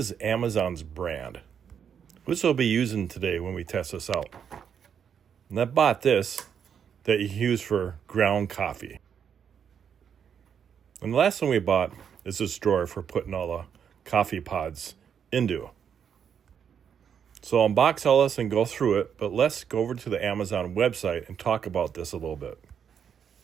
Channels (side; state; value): left; quieter; 7.8 dB